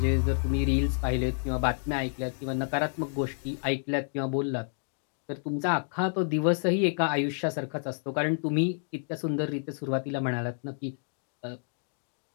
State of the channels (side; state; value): right; silent; digital silence